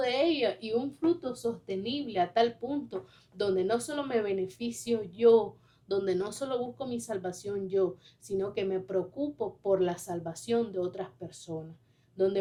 ellas y un fruto sostenible a tal punto donde no solo me beneficio yo, donde no solo busco mi salvación yo, sino que me preocupo por la salvación de otras personas, donde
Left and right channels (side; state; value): both; identical; correlation 1.00